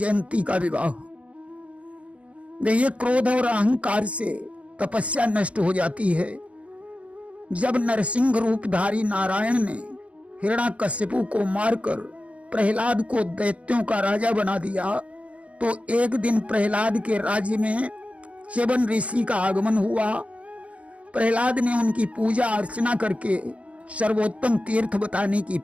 का विवाह। देखिए, क्रोध और अहंकार से तपस्या नष्ट हो जाती है। जब नरसिंह रूपधारी नारायण ने हिरण्याकश्यपु को मारकर प्रहलाद को दैत्यों का राजा बना दिया, तो एक दिन प्रहलाद के राज्य में च्यवन ऋषि का आगमन हुआ। प्रहलाद ने उनकी पूजा अर्चना करके सर्वोत्तम तीर्थ बताने की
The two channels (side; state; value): left; late; 0.064 ms